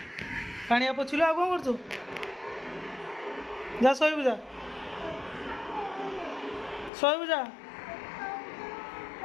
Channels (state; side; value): drops out; right; at 6.9 s